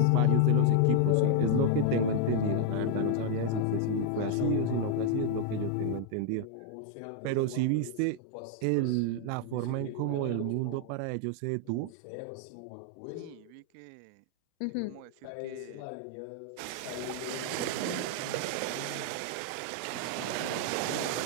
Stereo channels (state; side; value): different; both; correlation 0.00